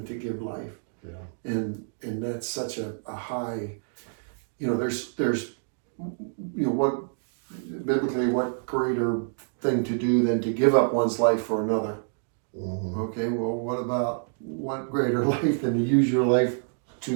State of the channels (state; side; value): silent; left; digital silence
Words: to give life? And that's such a high, there's what biblically, what greater thing to do than to give up one's life for another? Okay, well, what greater life than to use your life